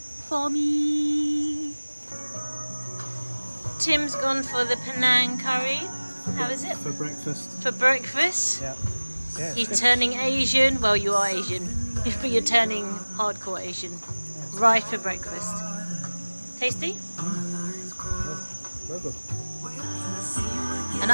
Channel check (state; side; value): inverted; both; correlation -1.00